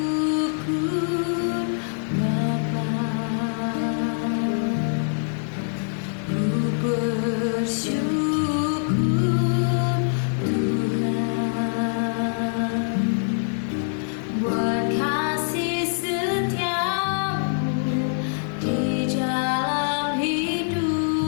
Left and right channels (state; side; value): silent; right; digital silence